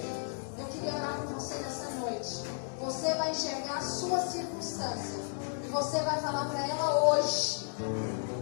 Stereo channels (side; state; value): right; silent; digital silence